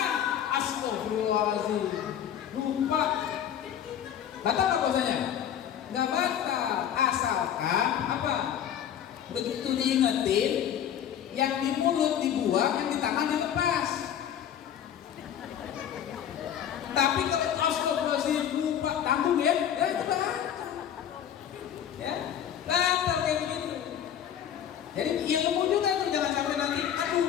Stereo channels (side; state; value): right; quieter; 9.6 dB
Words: Astagfirullahaladzim. Lupa. Batal apa puasanya? Nggak batal. Asalkan apa? Begitu diingetin, yang di mulut dibuang, yang di tangan dilepas. Tapi kalau astagfirullahaladzim lupa, tanggung ya itu batal. Ya, batal kayak begitu. Jadi ilmu juga tuh, jangan sampai nanti